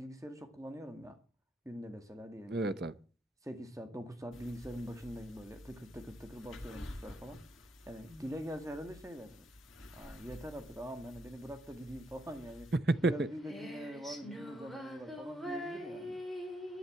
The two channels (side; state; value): both; normal; correlation 0.77